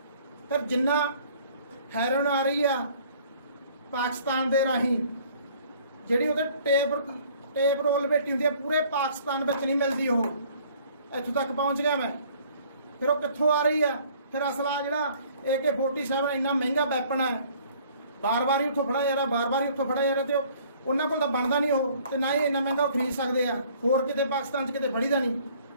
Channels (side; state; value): both; inverted; correlation -0.56